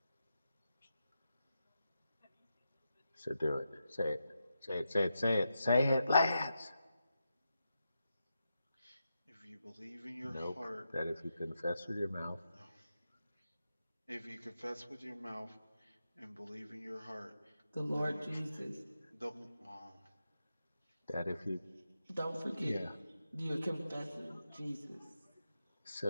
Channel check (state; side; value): inverted; both; correlation -0.87